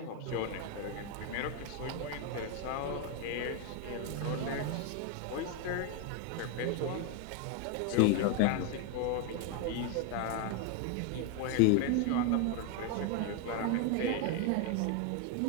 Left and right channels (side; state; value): both; different; correlation 0.01